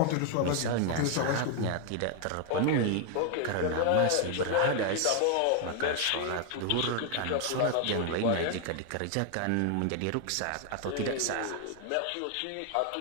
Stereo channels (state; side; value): different; both; correlation 0.00